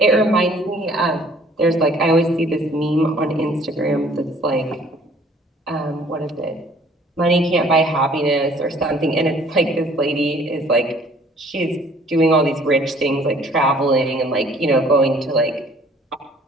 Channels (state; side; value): normal; both; correlation 0.56